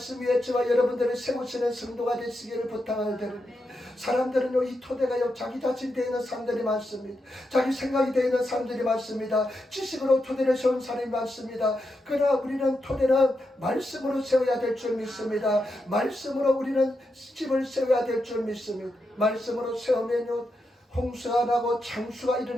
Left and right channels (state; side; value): normal; both; correlation 0.85